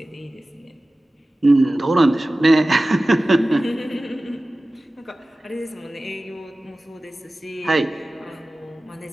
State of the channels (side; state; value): both; normal; correlation 0.97